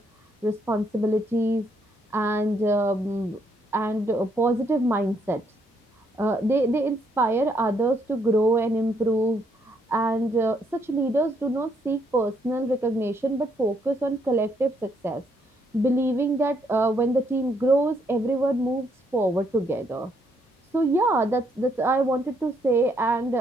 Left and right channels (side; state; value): both; normal; correlation 0.72